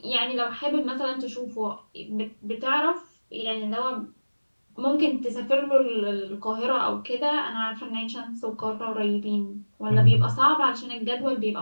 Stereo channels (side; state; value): both; inverted; correlation -1.00